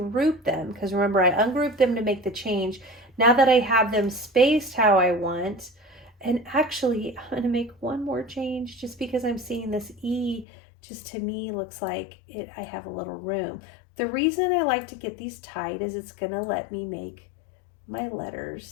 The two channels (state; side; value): drops out; right; at 10.5 s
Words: them, because remember, I ungrouped them to make the change. Now that I have them spaced how I want, and actually I'm going to make one more change just because I'm seeing this E just to me looks like I have a little room. The reason I like to get these tight is it's going to let me make my